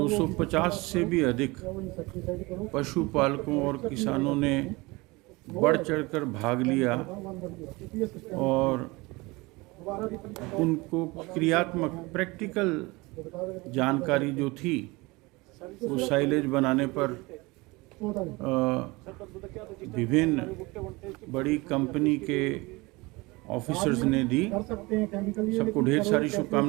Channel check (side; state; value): left; quieter; 23.6 dB